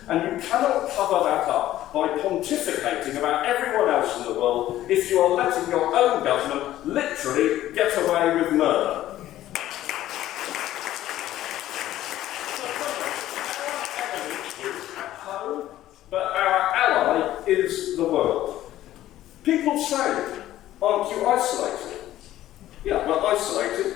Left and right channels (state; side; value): quieter; right; 13.8 dB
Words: and you cannot cover that up by pontificating about everyone else in the world if you are letting your own government literally get away with murder. Our enemy is at home, but our ally is the world. People say, aren't you isolated? Yeah, we're isolated